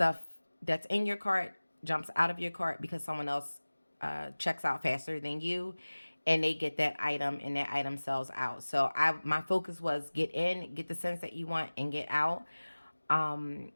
that's in your cart jumps out of your cart because someone else checks out faster than you, and they get that item and that item sells out. So my focus was get in, get the scents that you want, and get out.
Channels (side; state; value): both; inverted; correlation -1.00